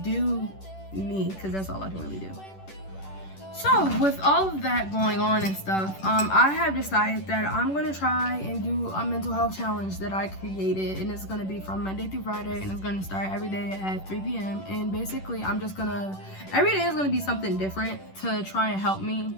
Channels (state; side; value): late; right; 10 ms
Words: do me, because that's all I can really do. So with all of that going on and stuff, I have decided that I'm going to try and do a mental health challenge that I created, and it's going to be from Monday through Friday, and it's going to start every day at 3 p.m. And basically I'm just going to, every day is going to be something different to try and help me,